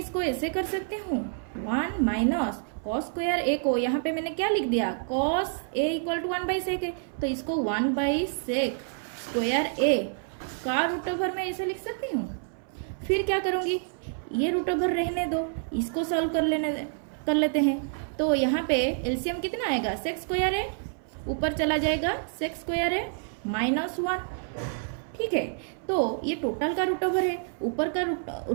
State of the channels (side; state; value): left; silent; 59 dB below the other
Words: ऐसे कर सकती हूँ, 1 - cos स्क्वायर ए को यहाँ पे मैंने क्या लिख दिया, cos A equal to 1/sec A, तो इसको 1/sec स्क्वायर ए का रूट ओवर मैं ऐसे लिख सकती हूँ। फिर क्या करूँगी, ये रूट ओवर रहने दो, इसको सॉल्व कर लेते हैं। तो यहाँ पे एलसीएम कितना आएगा, sec स्क्वायर ए, ऊपर चला जाएगा sec स्क्वायर ए -1। ठीक है, तो ये टोटल का रूट ओवर है,